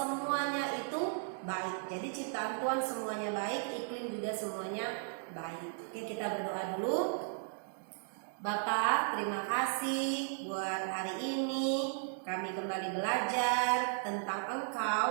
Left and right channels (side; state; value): left; silent; digital silence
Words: itu baik. Jadi ciptaan Tuhan semuanya baik, iklim juga semuanya baik. Oke, kita berdoa dulu. Bapak, terima kasih buat hari ini. Kami kembali belajar tentang